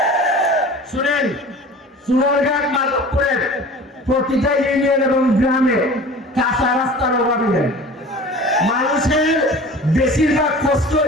শুনেন, চুনারঘাট মাধবপুরের প্রতিটা ইউনিয়ন এবং গ্রামে কাঁচা রাস্তার অভাব নেই। মানুষের বেশিরভাগ কষ্ট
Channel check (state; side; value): normal; both; correlation 0.41